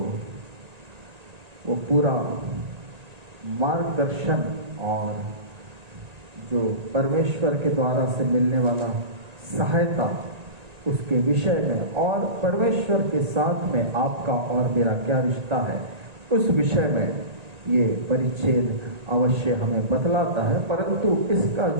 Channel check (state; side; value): late; left; 1.9 ms